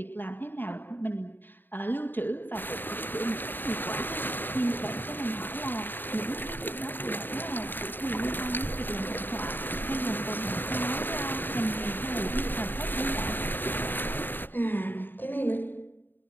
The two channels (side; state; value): right; late; 0.093 ms